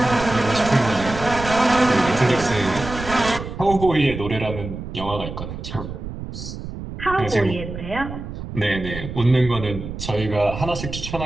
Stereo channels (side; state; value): right; noise; rumble, 9 dB below the sound